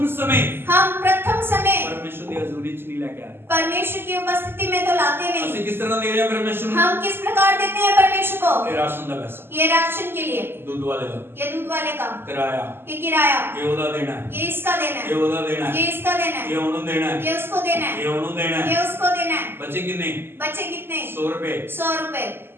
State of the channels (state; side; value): late; left; 0.11 ms